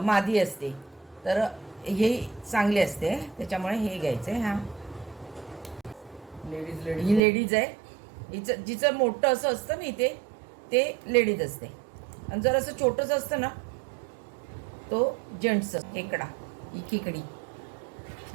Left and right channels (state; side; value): drops out; left; at 7.2 s